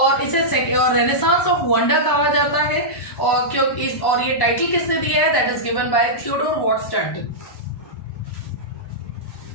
इसे और रेनेसांस ऑफ वंडर कहा जाता है। और ये टाइटल किसने दिया है? That is given by Theodore Watts Dunton.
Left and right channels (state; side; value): late; right; 1.1 ms